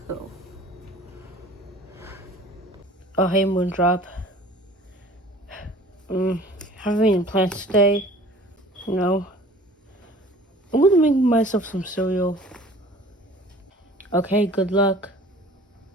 go. Oh, hey, Moondrop. Having any plans today? No. I'm gonna make myself some cereal. Okay, good luck.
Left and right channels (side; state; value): both; normal; correlation 0.47